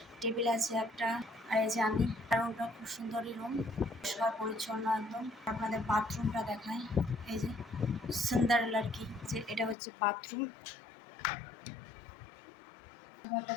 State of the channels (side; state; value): right; drops out; at 9.8 s